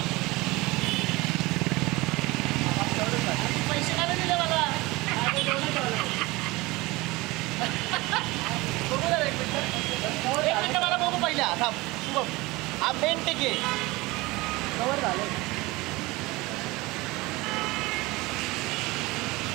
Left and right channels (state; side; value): quieter; left; 21.8 dB